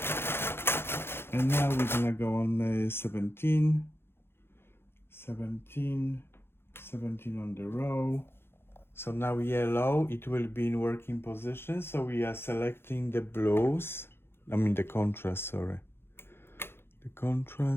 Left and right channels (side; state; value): right; late; 0.11 ms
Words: And now we're gonna go on 17 on the row. So now yellow, it will be in working position. So we are selecting the blues. The contrast, sorry. The